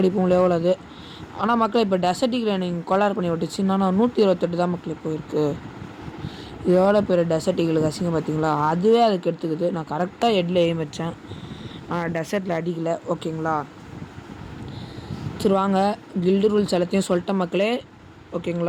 எவ்வளோ அது. ஆனால் மக்களே இப்போ டெசர்ட்டிக்கில் நீங்கள் கொலார் பண்ணி விட்டுச்சுன்னா 128 தான் மக்களே போயிருக்கு. எவ்வளோ பேர் டெசர்ட்டிகளுக்கு அசிங்க பார்த்தீங்களா. அதுவே அதுக்கு எடுத்துக்குது. நான் கரெக்டாக ஹெட்டில் எய்ம் வச்சேன், ஆனால் டெசர்ட்டில் அடிக்கலை. ஓகேங்களா. சரி வாங்க, கில்டு ரூல்ஸ் எல்லாத்தையும் சொல்லிட்டேன் மக்களே.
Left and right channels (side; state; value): both; identical; correlation 1.00